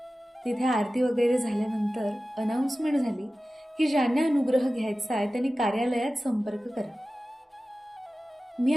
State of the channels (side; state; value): both; normal; correlation 0.95